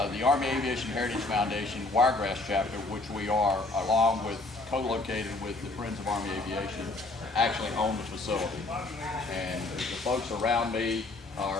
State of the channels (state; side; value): quieter; right; 3.1 dB